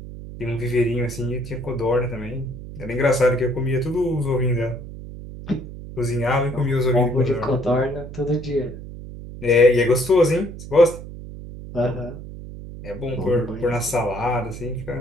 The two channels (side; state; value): right; noise; hum, 12 dB below the sound